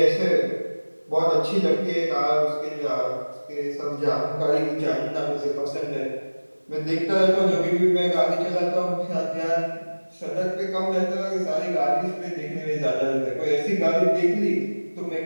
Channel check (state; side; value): inverted; both; correlation -1.00